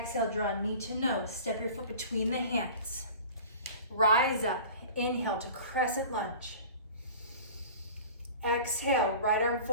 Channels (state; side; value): inverted; both; correlation -0.40